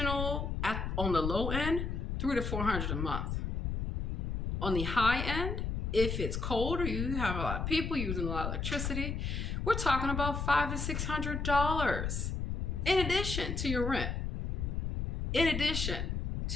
on the low end, $300 to $400 a month. On the high end, if it's cold or you have a lot of people using a lot of electricity, we're talking about $500 to $600 in addition to your rent. In addition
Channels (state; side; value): noise; left; rumble, 2 dB below the sound